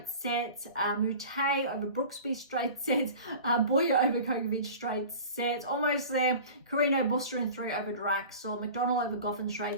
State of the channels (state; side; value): inverted; both; correlation -0.39